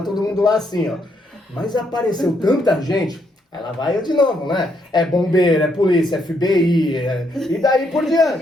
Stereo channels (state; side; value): normal; both; correlation 0.75